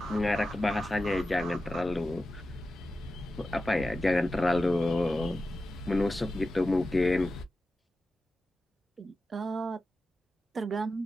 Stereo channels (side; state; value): both; normal; correlation 0.93